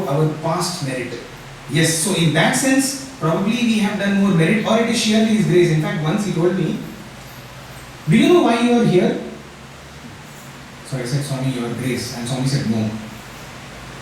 our past merit. Yes, so in that sense, probably we have done more merit, or it is sheerly His grace. In fact, once he told me, do you know why you are here? So I said, Swami, your grace. And Swami said, no.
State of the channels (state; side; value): identical; both; correlation 1.00